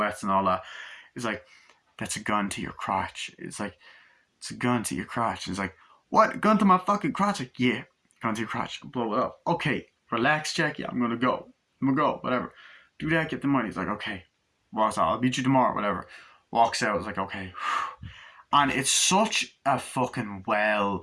and all that. It's like, that's a gun to your crotch. It's like, it's a gun to your crotch. It's like, what? Gun to my fucking crotch? Like, yeah, gun to your crotch. Blow it up. Okay, relax, Jackie. I'm gonna go. Whatever. Do that, get the money. He's like, okay. Walks out. I'll meet you tomorrow, whatever. Walks out. It's like, okay. And it's such a fucking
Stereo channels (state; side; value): identical; both; correlation 1.00